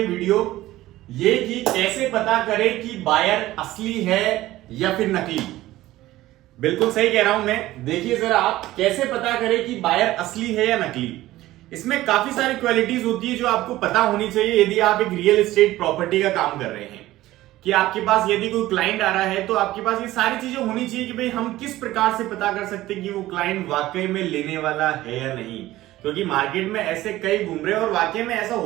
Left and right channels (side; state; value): left; quieter; 16.1 dB